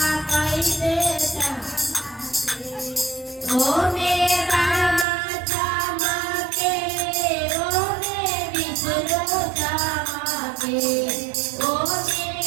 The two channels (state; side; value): drops out; left; at 5.1 s